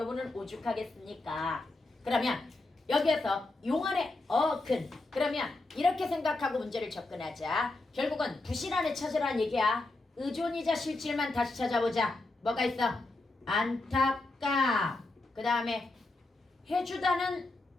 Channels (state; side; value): quieter; right; 3.1 dB